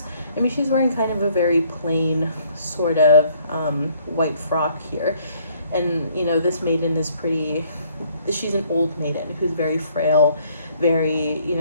I mean, she's wearing kind of a very plain sort of white frock here. And, you know, this maiden is pretty, she's an old maiden who's very frail, very, you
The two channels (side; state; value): both; inverted; correlation -0.63